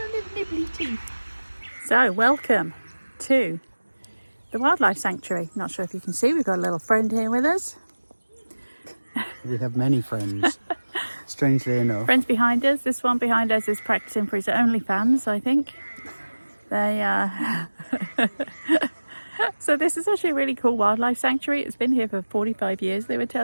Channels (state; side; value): inverted; both; correlation -1.00